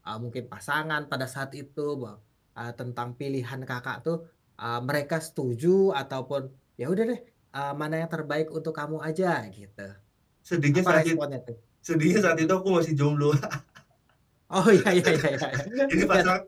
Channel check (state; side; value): identical; both; correlation 1.00